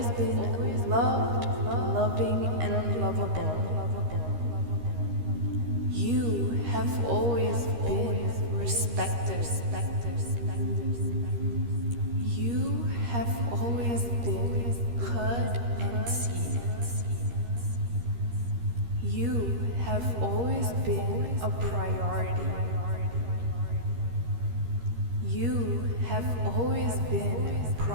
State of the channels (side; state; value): left; late; 13 ms